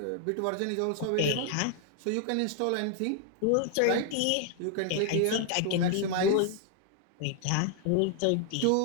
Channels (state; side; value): different; both; correlation 0.00